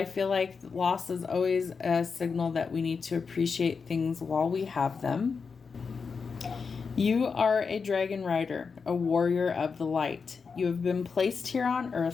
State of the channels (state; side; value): quieter; right; 5.3 dB